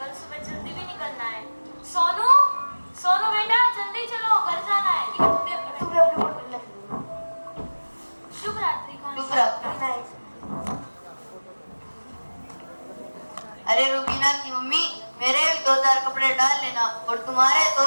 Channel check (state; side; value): inverted; both; correlation -1.00